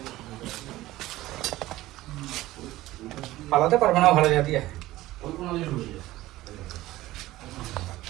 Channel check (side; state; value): left; quieter; 16.7 dB